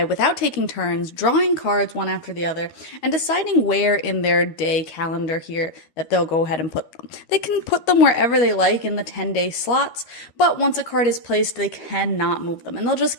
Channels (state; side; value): late; right; 13 ms